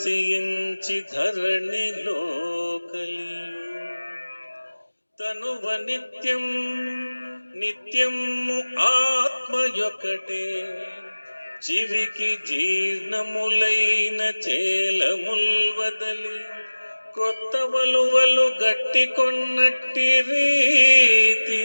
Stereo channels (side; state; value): both; inverted; correlation -1.00